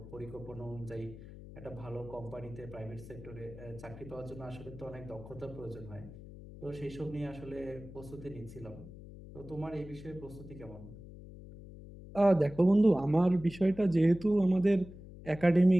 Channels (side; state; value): left; noise; hum, 15 dB below the sound